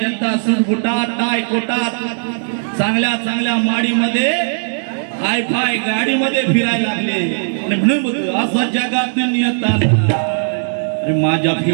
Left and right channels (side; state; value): left; silent; digital silence